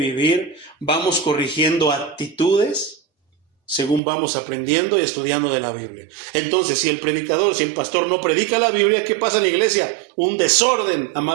Vamos corrigiendo actitudes según vamos aprendiendo y estudiando de la Biblia. Entonces, si el predicador, si el pastor no predica la Biblia, ¿qué pasa en la iglesia? Un desorden a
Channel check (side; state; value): left; drops out; at 4.0 s